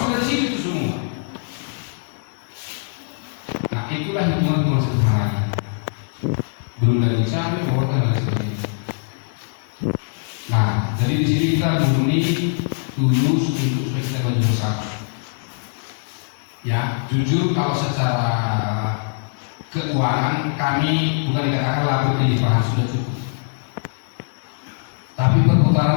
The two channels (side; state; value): right; silent; digital silence